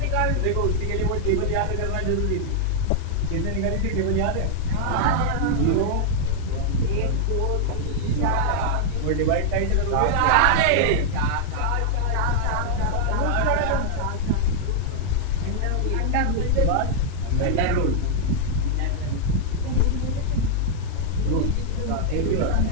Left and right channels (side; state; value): both; different; correlation -0.01